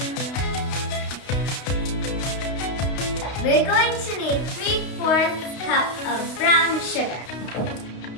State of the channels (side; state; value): right; late; 32 ms